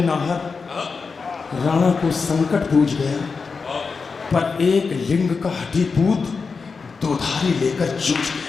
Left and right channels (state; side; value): quieter; right; 4.9 dB